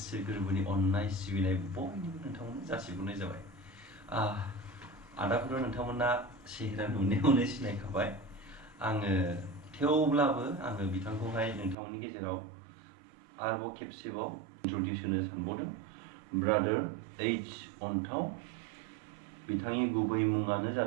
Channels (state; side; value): drops out; left; at 11.8 s